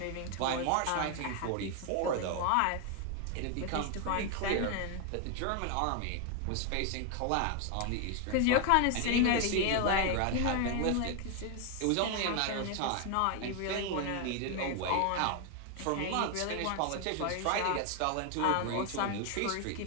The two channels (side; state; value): both; different; correlation 0.01